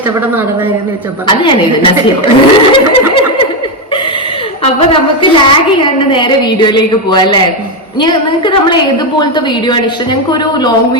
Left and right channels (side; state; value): both; normal; correlation 0.08